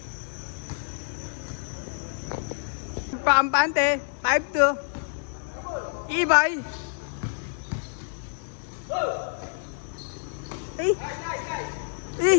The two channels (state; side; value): silent; right; digital silence